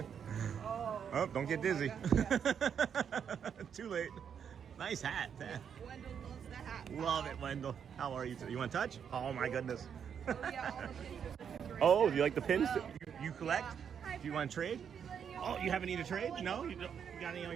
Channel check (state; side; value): quieter; left; 7.7 dB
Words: Oh, don't get dizzy. Too late. Nice hat. Wendell loves the hat. Love it, Wendell. How are you today? You want to touch? Oh my goodness. Oh, yeah, all the pins are great. Oh, you like the pins? You collect? Do you want to trade? Oh, you haven't need a trade? No? You got any in